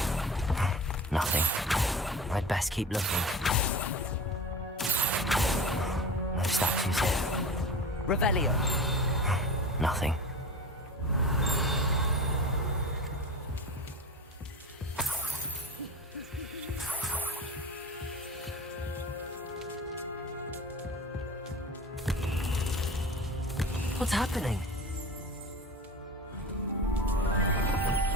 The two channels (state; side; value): normal; both; correlation 0.34